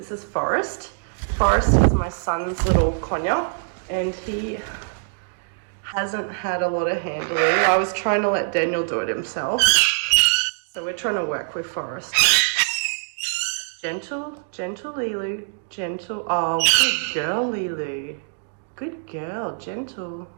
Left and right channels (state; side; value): silent; left; digital silence